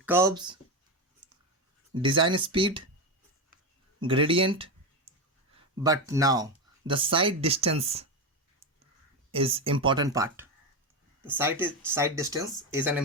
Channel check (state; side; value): normal; both; correlation 0.14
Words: curves, design speed, gradient, but now the side distance is important part. The side distance is an